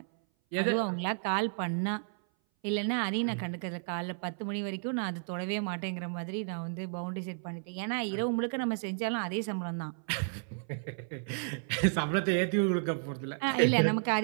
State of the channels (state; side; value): silent; left; 56 dB below the other